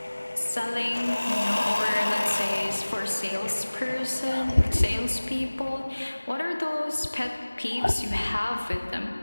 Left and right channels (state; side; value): inverted; both; correlation -1.00